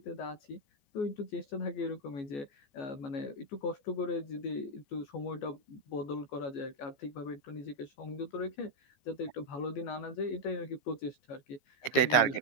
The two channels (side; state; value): right; late; 14 ms